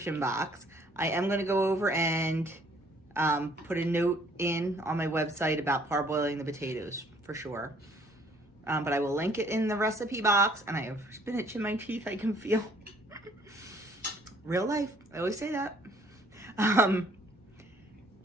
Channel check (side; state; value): both; normal; correlation 0.60